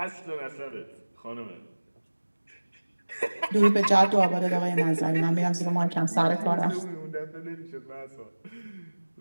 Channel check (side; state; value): both; inverted; correlation -1.00